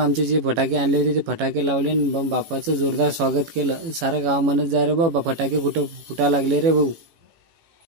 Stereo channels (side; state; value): left; late; 18 ms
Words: आमचे जे फटाके आणले होते ते फटाके लावले आणि बाप्पाचं जोरदार स्वागत केलं. सारं गाव म्हणत जाय रे बाबा फटाके कुठं फुटा लागले रे भाऊ.